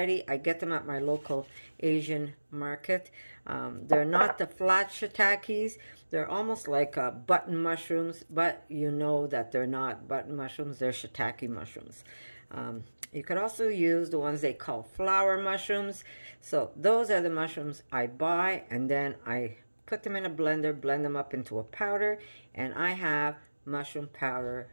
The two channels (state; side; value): inverted; both; correlation -1.00